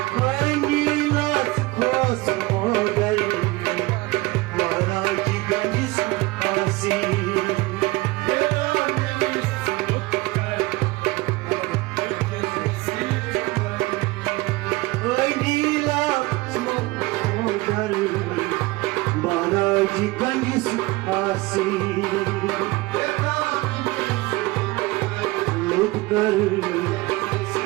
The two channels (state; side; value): quieter; left; 21.7 dB